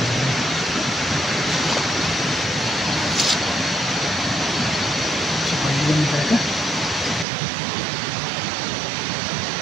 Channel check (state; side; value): drops out; left; at 7.2 s